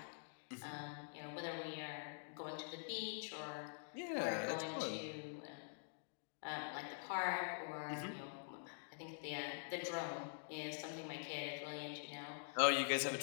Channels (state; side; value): silent; right; digital silence